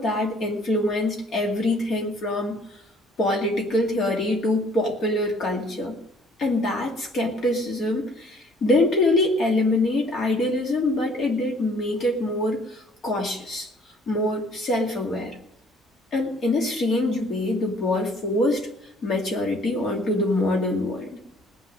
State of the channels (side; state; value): both; normal; correlation 0.58